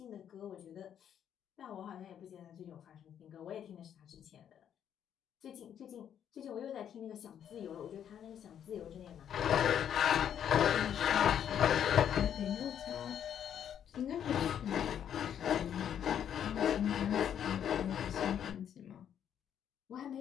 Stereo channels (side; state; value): right; quieter; 9.3 dB